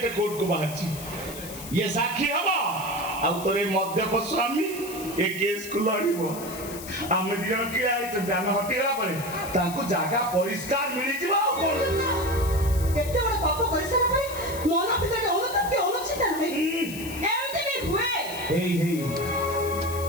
କୋର୍ଟକୁ ବାହାରିଛି ଇଏ ସାକ୍ଷୀ ହବ ଆଉ ତୋର ଏ ମଦ୍ୟପ ସ୍ୱାମୀ ଏ କେସକୁ ଲଢିବ ଆମେ ଦି ଜଣ କିଏ ଆଇଛନ୍ତି ଆମେ ହଟିଗଲା ପରେ ତାଙ୍କୁ ଜାଗା ପରିଷ୍କାର ମିଳିଯିବ ଆଉ କଣ ଏତେ ବଡ ପାପ କରିସାରିଲା ପରେ ମନ ଭିତରେ ଅନୁତାପ କି ଅନୁଚିନ୍ତା ନାହିଁ ଏମିତି ବି ହୁଏ ହେଇ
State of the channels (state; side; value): noise; left; hiss, 12 dB below the sound